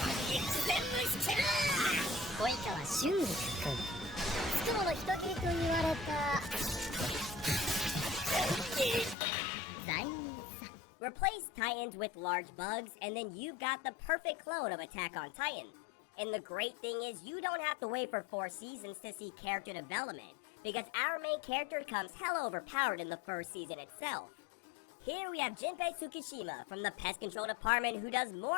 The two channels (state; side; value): drops out; right; at 9.2 s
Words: Replace Titans with large bugs, and then you've got the perfect clone of Attack on Titan. And the great thing is you don't have to wait for 4 seasons to see character development, because our main character comes hella overpowered in the first season itself. Here we have Junpei Tsukishima from the pest control department who does